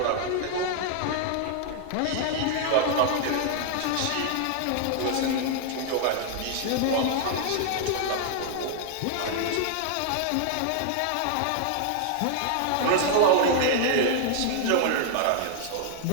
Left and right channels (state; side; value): different; both; correlation 0.00